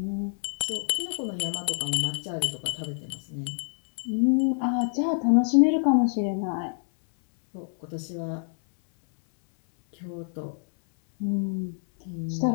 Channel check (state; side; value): silent; right; 60 dB below the other